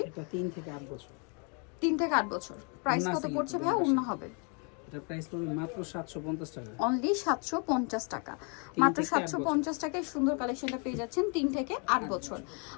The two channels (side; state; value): right; quieter; 36.4 dB